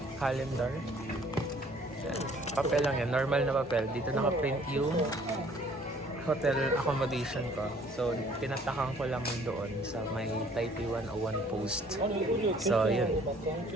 calendar. Yan. Papel lang yan. Normal na papel. Dito naka-print yung hotel accommodation ko. So, pinatakan ko lang doon sa may Taipei 101 post. So, yun.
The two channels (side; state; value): both; normal; correlation 0.57